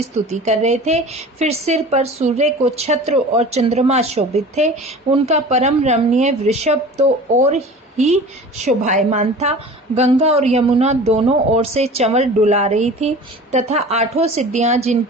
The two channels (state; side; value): normal; both; correlation 0.40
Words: स्तुति कर रहे थे। फिर सिर पर सूर्य को छत्र और चंद्रमा शोभित थे। उनका परम रमणीय वृषभ तो और ही शोभायमान था। गंगा और यमुना दोनों ओर से चंवर डुला रही थी तथा आठों सिद्धियां